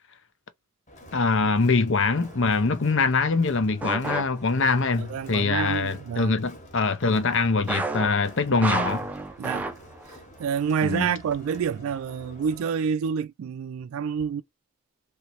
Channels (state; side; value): normal; both; correlation 0.29